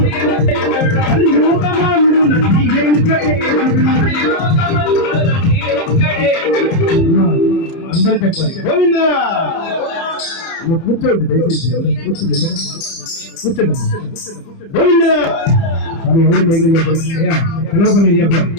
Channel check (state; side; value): late; right; 30 ms